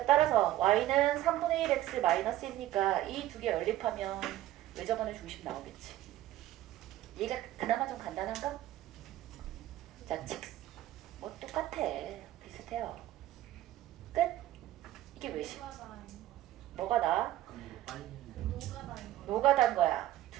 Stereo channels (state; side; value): quieter; left; 14.4 dB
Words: 따라서 y는 3분의 1x 마이너스 1이니까 이 두 개 연립하면 외접원의 중심 나오겠지. 얘가 그나마 좀 간단한가? 자, 뭐 똑같아. 비슷해요. 끝? 이게 외심. 뭐가 나? 노가다인 거야.